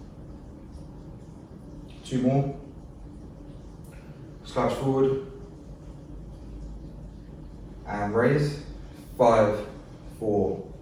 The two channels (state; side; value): identical; both; correlation 1.00